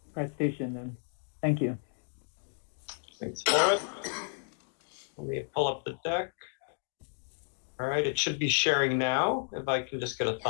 presentation. And thank you. Thanks, Forrest. Let me pull up the deck. All right, it should be sharing now. If I can just get a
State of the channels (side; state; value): right; silent; digital silence